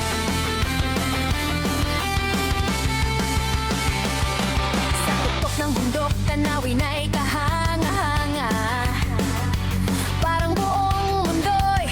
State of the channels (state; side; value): identical; both; correlation 1.00